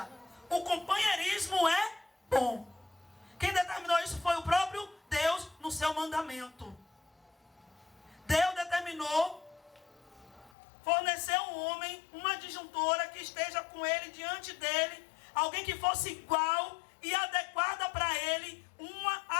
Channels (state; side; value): drops out; right; at 10.5 s